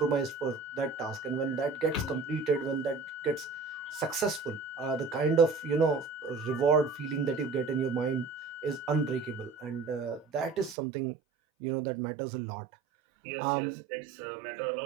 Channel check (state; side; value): drops out; left; at 10.8 s